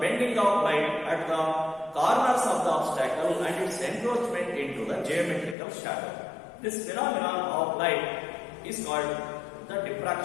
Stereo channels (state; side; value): drops out; right; at 5.6 s